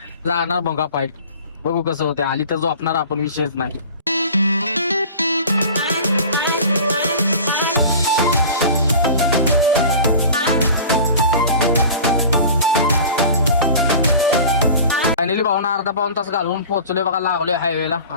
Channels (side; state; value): both; inverted; correlation -0.40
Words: जाणार बंगा फाईट. बघू कसं होते. आली तर झोपणार आपण, विषयच नाही. फायनली भावना अर्धा-पाऊण तास घालवून पोहोचलोय बघा. लागलोय हायवेला.